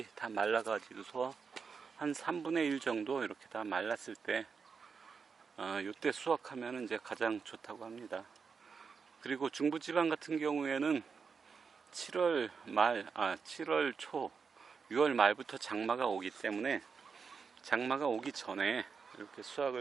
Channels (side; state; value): left; quieter; 5.6 dB